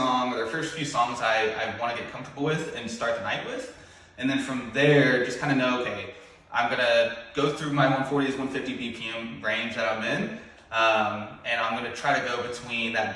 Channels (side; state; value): both; identical; correlation 1.00